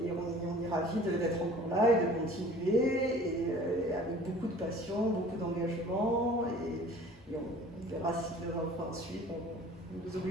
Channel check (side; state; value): both; normal; correlation 0.47